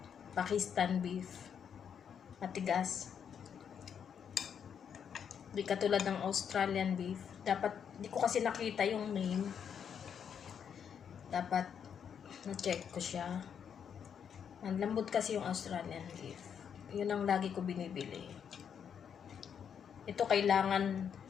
Pakistan beef, matigas. Di katulad ng Australian beef. Dapat, di ko kasi nakita yung name. Dapat na-check ko siya. Ang lambot kasi yung Australian beef. Yun ang lagi ko binibili. Ito kailangan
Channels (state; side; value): quieter; right; 7.8 dB